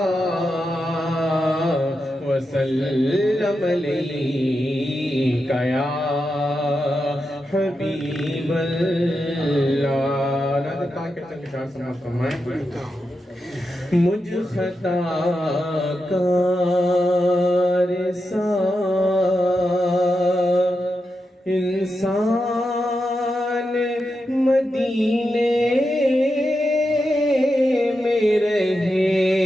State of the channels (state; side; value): normal; both; correlation 0.88